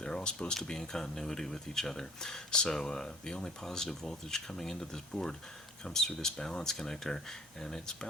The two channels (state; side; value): normal; both; correlation 0.53